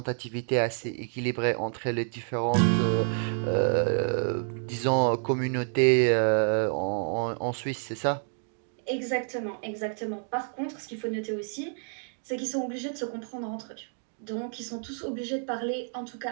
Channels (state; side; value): silent; left; 59 dB below the other